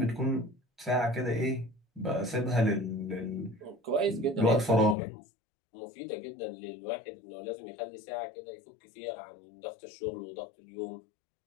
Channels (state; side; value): drops out; right; at 5.0 s